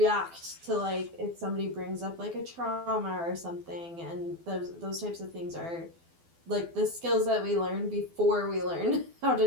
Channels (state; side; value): late; left; 12 ms